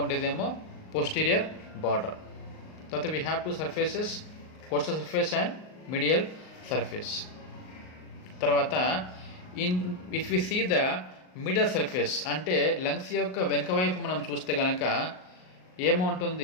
ఉండేదేమో posterior border. తర్వాత we have 2 surfaces, coastal surface and medial surface. తర్వాత if we see the middle surface అంటే lungs యొక్క వెనుక వైపు మనం చూస్తే కనుక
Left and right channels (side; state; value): right; late; 38 ms